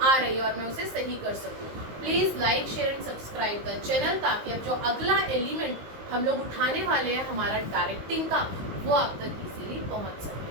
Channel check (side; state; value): left; late; 19 ms